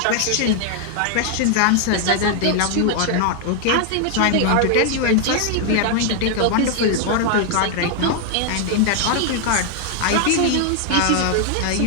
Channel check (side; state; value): both; different; correlation 0.00